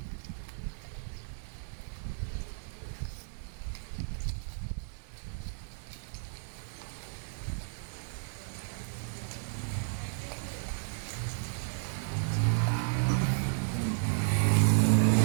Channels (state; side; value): silent; left; 55 dB below the other